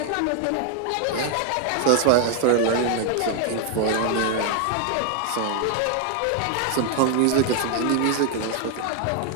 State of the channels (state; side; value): different; both; correlation 0.01